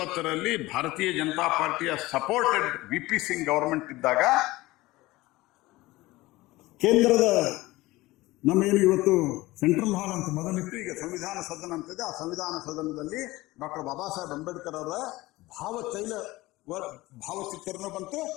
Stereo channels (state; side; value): quieter; right; 19.3 dB